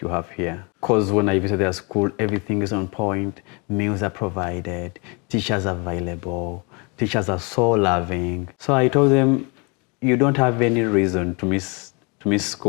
you have here. Because when I visit their school, everything is on point, meals are provided, teachers are available, teachers are so loving. So I told them, you don't have any reason to miss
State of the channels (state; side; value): quieter; right; 31.3 dB